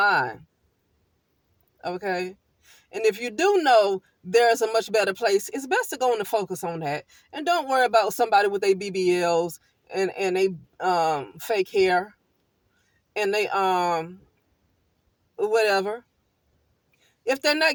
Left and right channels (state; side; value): identical; both; correlation 1.00